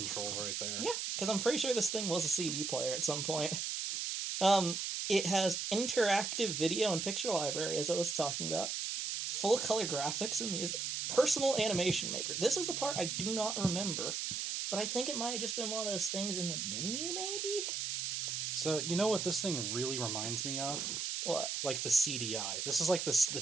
right there. Yeah, because I'm pretty sure this thing was a CD player at some point. It has interactive video and picture library, as I was talking about. Full color graphics and music. Personal animation maker. This is the part I do not remember. But I think it might have just been one of those things in the menu, maybe? So, you know what this thing really reminds me of? What? Like the CDI. This is like the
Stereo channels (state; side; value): noise; right; hiss, 2 dB below the sound